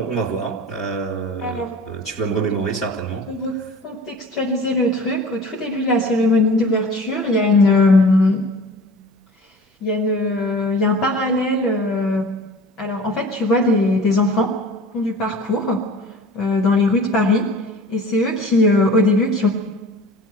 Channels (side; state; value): both; normal; correlation 0.41